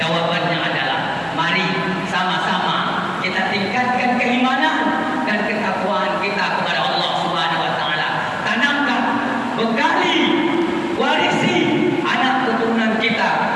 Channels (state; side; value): identical; both; correlation 1.00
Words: adalah mari sama-sama kita tingkatkan keimanan dan ketakwaan kita kepada Allah Subhanahu wa taala. Tanamkan, bekali, warisi anak keturunan kita